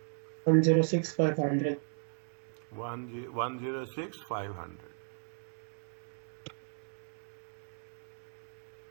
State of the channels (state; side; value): silent; left; 54 dB below the other